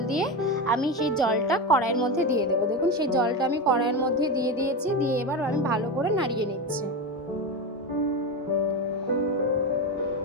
দিয়ে আমি সেই জলটা কড়াইয়ের মধ্যে দিয়ে দেবো। দেখুন সেই জলটা আমি কড়াইয়ের মধ্যে দিয়ে দিয়েছি। দিয়ে এবার আমি ভালো করে নাড়িয়ে নিচ্ছি।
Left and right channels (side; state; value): both; normal; correlation 0.17